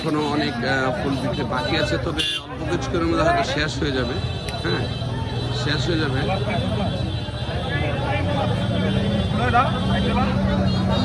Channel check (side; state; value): both; identical; correlation 1.00